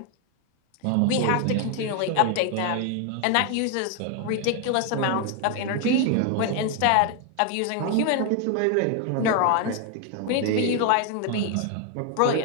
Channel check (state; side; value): different; both; correlation 0.01